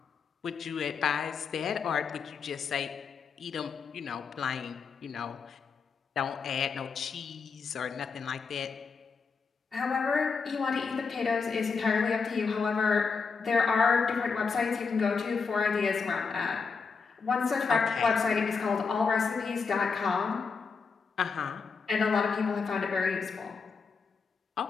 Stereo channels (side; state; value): right; quieter; 5.2 dB